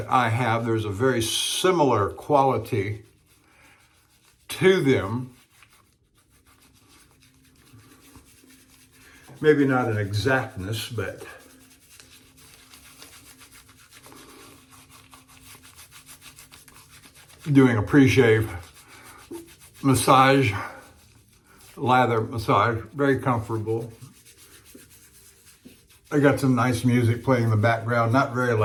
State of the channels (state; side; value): identical; both; correlation 1.00